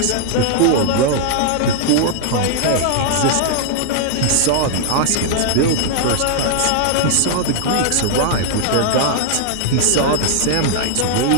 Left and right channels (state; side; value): different; both; correlation 0.00